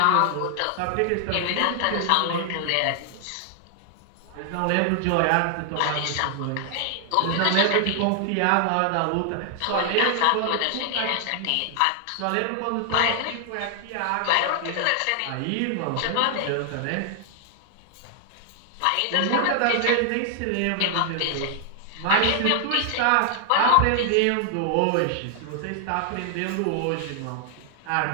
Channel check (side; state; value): both; different; correlation 0.00